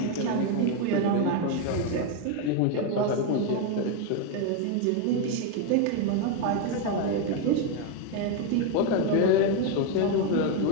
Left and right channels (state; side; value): different; both; correlation 0.02